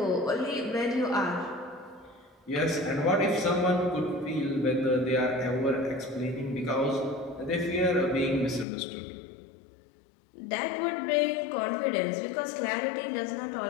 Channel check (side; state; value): right; drops out; at 8.7 s